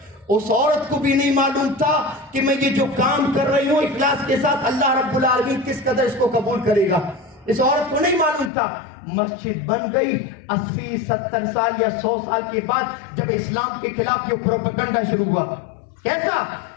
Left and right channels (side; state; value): right; drops out; at 8.5 s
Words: اس عورت کو بھی نہیں معلوم تھا کہ میں یہ جو کام کر رہی ہوں اخلاص کے ساتھ اللہ رب العالمین کس قدر اس کو قبول کرے گا. اس عورت کو نہیں معلوم تھا. مسجد بن گئی 80-70 سال یا 100 سال کے بعد جب اسلام کے خلاف یہ پروپیگنڈا شروع ہوا. کیسا